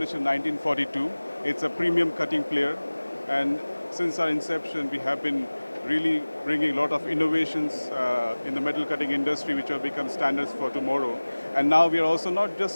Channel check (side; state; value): both; inverted; correlation -1.00